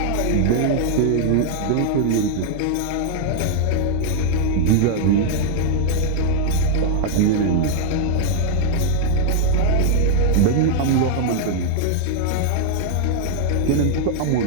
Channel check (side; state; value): both; different; correlation -0.01